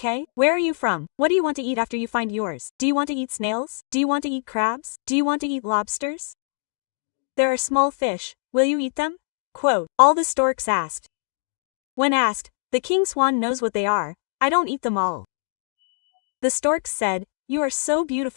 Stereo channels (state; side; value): silent; right; digital silence